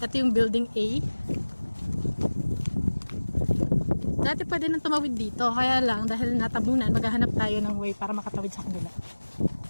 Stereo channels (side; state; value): both; inverted; correlation -1.00